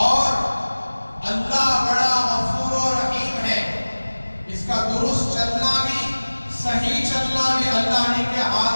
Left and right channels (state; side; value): inverted; both; correlation -1.00